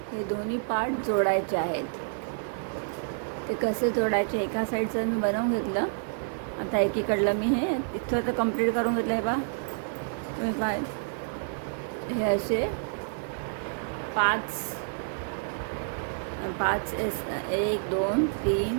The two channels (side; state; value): left; silent; 59 dB below the other